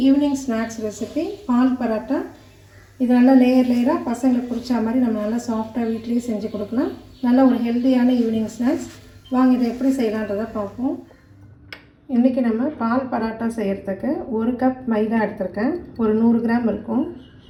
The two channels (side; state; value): both; identical; correlation 1.00